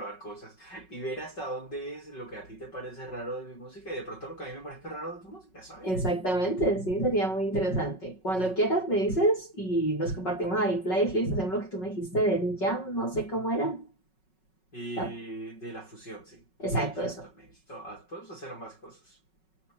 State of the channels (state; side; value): late; right; 5.4 ms